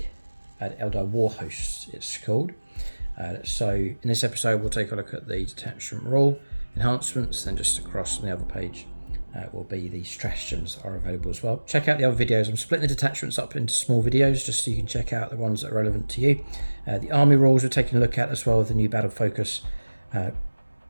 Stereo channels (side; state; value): both; inverted; correlation -1.00